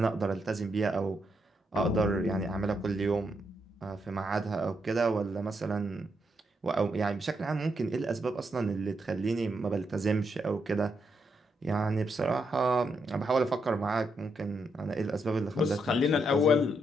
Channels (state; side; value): normal; both; correlation 0.80